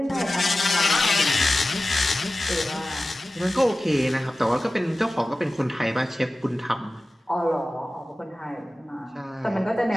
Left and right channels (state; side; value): normal; both; correlation 0.96